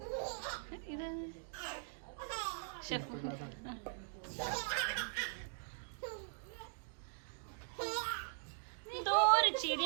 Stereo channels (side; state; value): left; silent; digital silence